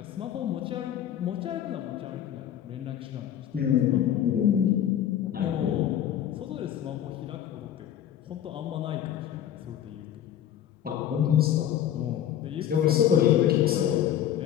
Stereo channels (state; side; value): quieter; right; 10.5 dB